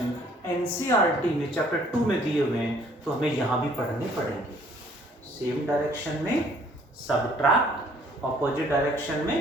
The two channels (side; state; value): both; normal; correlation 0.59